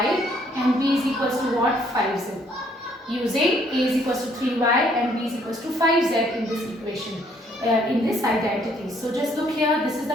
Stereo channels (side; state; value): both; normal; correlation 0.66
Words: and b is equals to what? 5z. Using a is equals to 3y and b is equals to 5z in this equation, in this identity. So just look here. This is